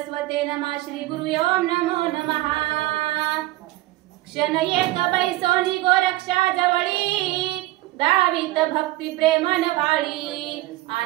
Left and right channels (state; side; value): quieter; left; 18.0 dB